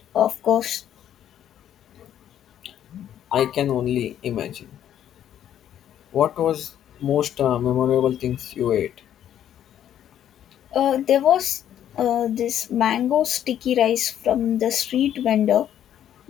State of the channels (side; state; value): right; quieter; 10.5 dB